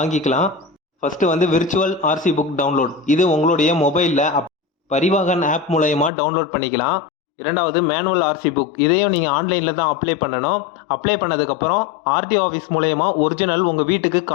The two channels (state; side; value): drops out; right; at 6.1 s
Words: First virtual RC book download. இது உங்களுடைய மொபைலில் பரிவாகன் ஆப் மூலயமா டவுன்லோட் பண்ணிக்கலாம். இரண்டாவது மேனுவல் ஆர்சி புக். இதையும் நீங்கள் ஆன்லைனில் தான் அப்ளை பண்ணணும். அப்ளை பண்ணதுக்கப்புறம் ஆர்டிஓ ஆஃபீஸ் மூலயமா ஒரிஜினல் உங்கள் வீட்டுக்கு